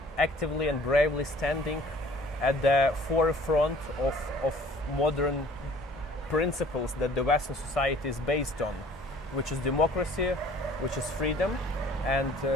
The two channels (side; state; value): both; normal; correlation 0.52